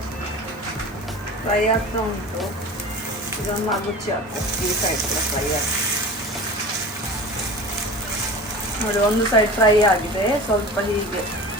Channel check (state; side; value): normal; both; correlation 0.36